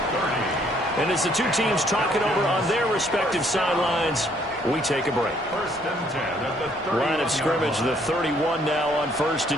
And as the two teams talk it over on their respective sidelines, we take a break. Line of scrimmage, the 31 now on 1st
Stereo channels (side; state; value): both; normal; correlation 0.65